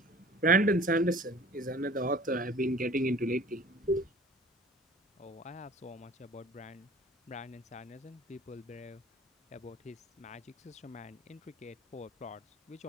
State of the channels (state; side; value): normal; both; correlation 0.47